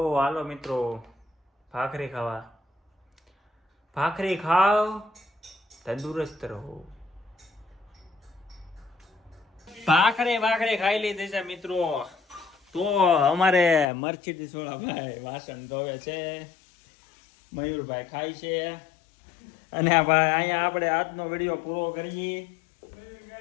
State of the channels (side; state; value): right; drops out; at 13.9 s